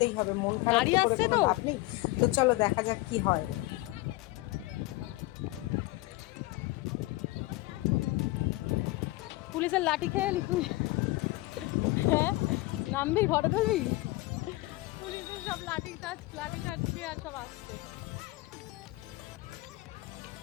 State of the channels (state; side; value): quieter; right; 20.4 dB